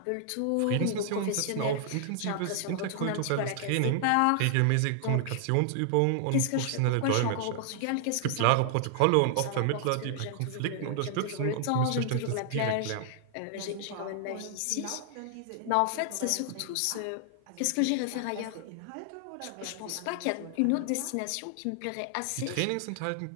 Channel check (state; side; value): different; both; correlation 0.00